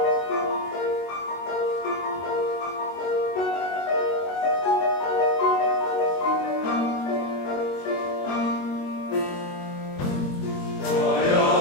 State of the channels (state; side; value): late; right; 22 ms